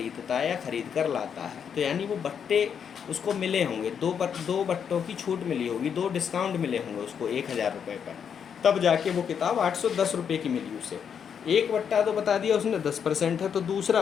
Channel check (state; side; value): quieter; right; 7.5 dB